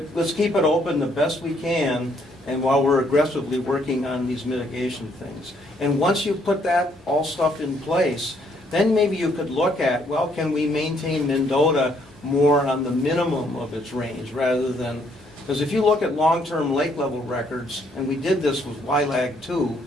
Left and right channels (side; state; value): both; normal; correlation 0.69